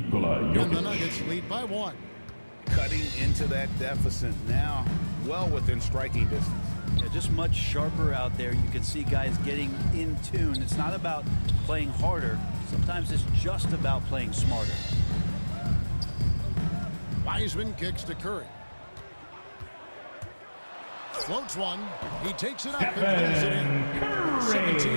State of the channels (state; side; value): inverted; both; correlation -1.00